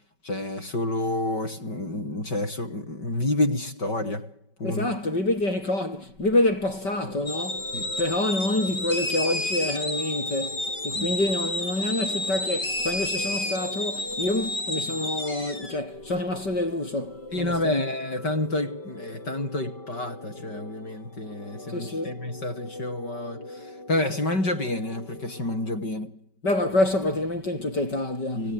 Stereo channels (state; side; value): late; right; 5.2 ms